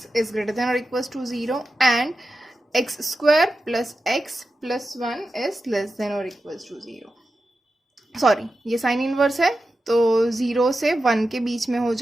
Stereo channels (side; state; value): both; normal; correlation 0.91